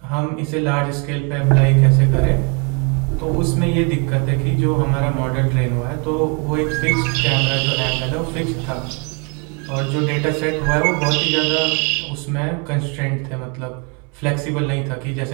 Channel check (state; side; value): quieter; left; 33.7 dB